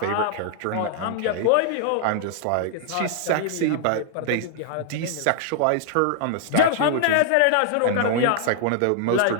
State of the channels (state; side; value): different; both; correlation -0.01